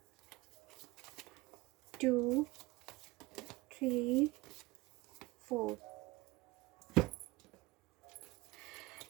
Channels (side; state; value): left; quieter; 21.5 dB